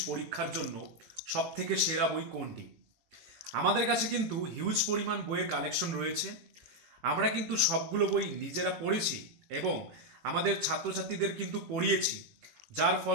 পরীক্ষার জন্য সবথেকে সেরা বই কোনটি। আমাদের কাছে কিন্তু হিউজ পরিমাণ বইয়ের কালেকশন রয়েছে। আমরা কিন্তু সবগুলো বই নিজেরা পড়েছি এবং আমাদের ছাত্রছাত্রীদের কিন্তু পড়িয়েছি, যার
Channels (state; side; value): late; left; 18 ms